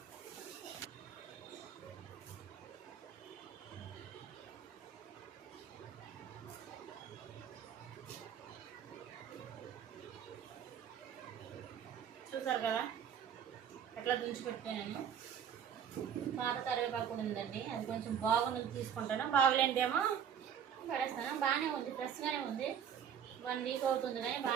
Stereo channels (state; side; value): quieter; left; 8.5 dB